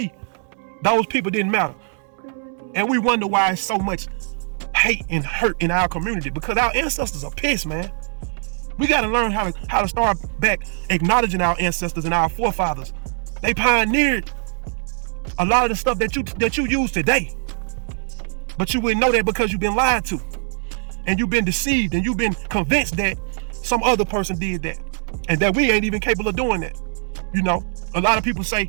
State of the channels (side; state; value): left; silent; 56 dB below the other